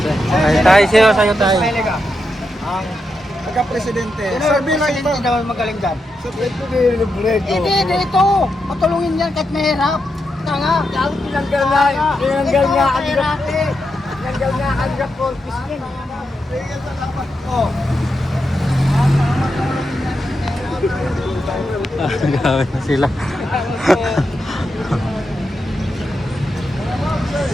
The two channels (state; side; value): normal; both; correlation 0.85